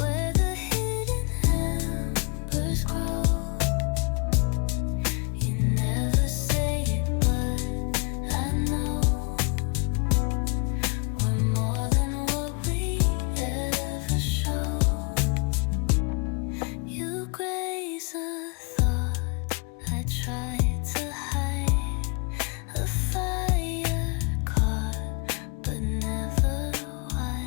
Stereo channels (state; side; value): quieter; right; 33.2 dB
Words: the hidden embers grow. You never say it, but I know we're more than what we ever show. You graze a thought I tried to hide, a fire caught but never